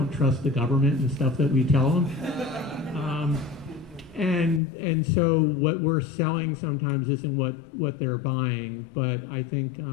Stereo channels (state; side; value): drops out; right; at 4.6 s